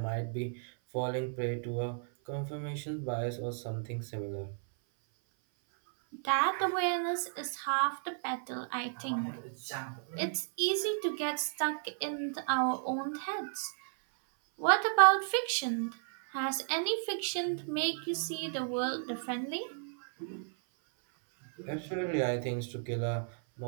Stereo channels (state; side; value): silent; left; 55 dB below the other